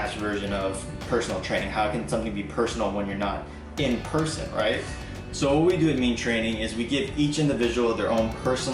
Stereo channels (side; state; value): both; identical; correlation 1.00